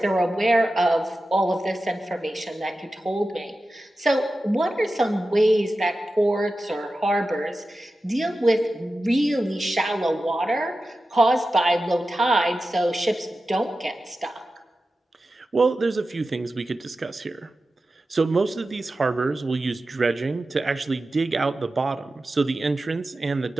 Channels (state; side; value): normal; both; correlation 0.93